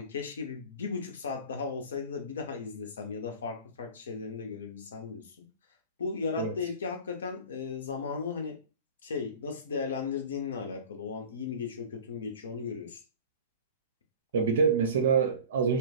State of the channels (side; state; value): both; inverted; correlation -0.39